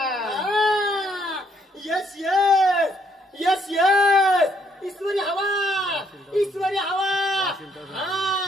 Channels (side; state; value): both; normal; correlation 0.70